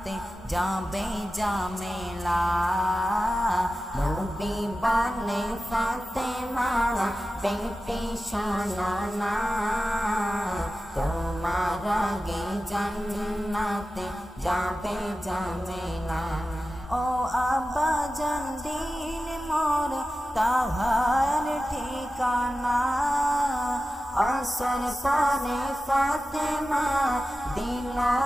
যাবে জামেলা। নবী বলে ফাতেমা বেটি শোনো না, তোমার আগে জান্নাতে যাবে জামেলা। ও আব্বাজান দিন মোর তাহার ঠিকানা, আসর পরে ফাতেমা দিল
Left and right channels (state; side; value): normal; both; correlation 0.94